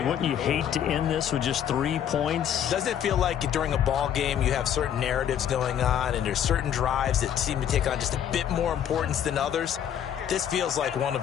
Wouldn't you hate to end this with just 3 points? Doesn't it feel like during a ball game you have certain narratives going on and there's certain drives that seem to take on just a bit more importance than others? This feels like one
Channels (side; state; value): right; quieter; 9.5 dB